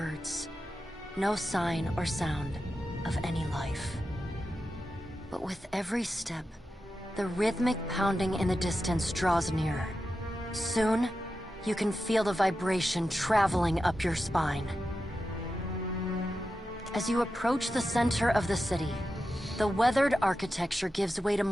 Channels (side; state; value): both; normal; correlation 0.91